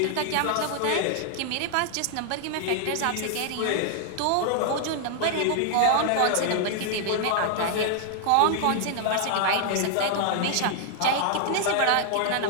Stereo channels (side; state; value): both; different; correlation 0.00